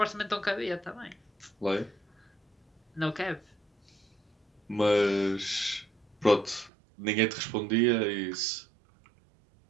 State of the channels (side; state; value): left; drops out; at 6.7 s